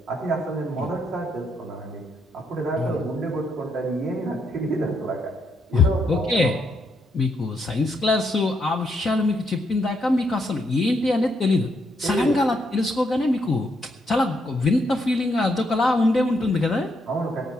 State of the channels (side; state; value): both; normal; correlation 0.77